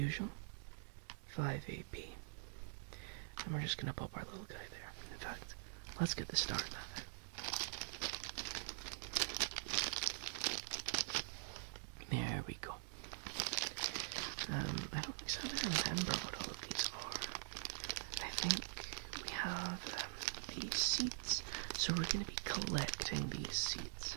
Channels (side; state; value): left; silent; digital silence